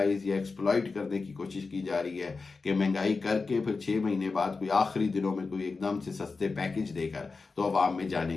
या एक्सप्लॉइट करने की कोशिश की जा रही है कि महंगाई करके फिर 6 महीने बाद कोई आखिरी दिनों में कोई एकदम से सस्ते पैकेज देकर तो अवाम में जाने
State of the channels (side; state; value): right; quieter; 4.3 dB